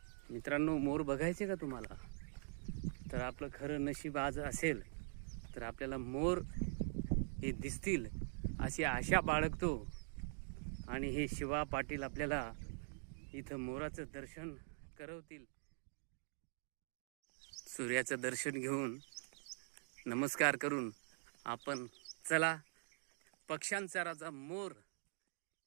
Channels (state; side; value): silent; left; digital silence